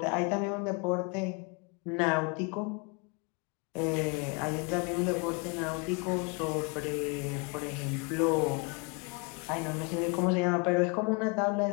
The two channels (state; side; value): quieter; right; 31.6 dB